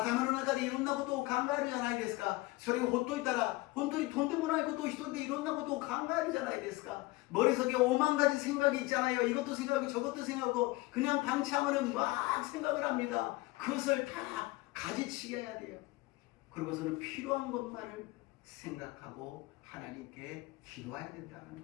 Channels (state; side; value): quieter; right; 20.8 dB